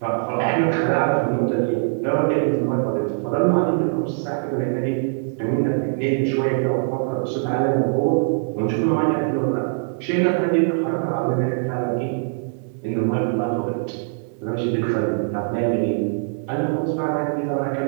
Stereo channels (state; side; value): silent; left; digital silence